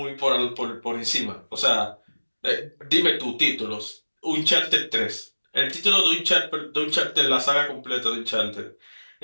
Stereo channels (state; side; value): inverted; both; correlation -1.00